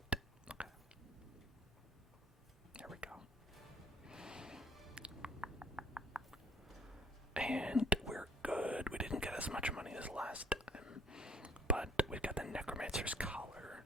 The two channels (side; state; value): both; normal; correlation 0.56